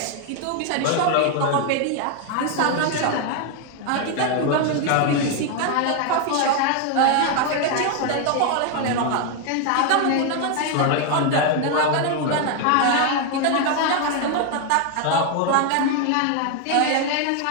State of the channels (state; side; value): different; both; correlation 0.01